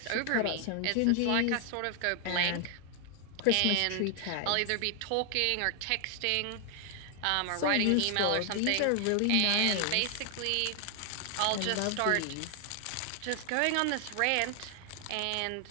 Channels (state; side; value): different; both; correlation 0.00